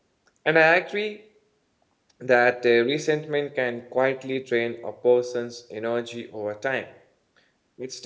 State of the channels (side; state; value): both; identical; correlation 1.00